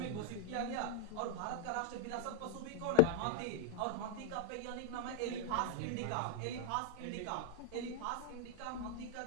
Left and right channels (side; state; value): both; different; correlation -0.01